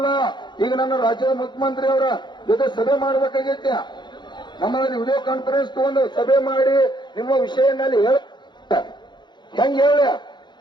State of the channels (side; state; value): right; late; 0.22 ms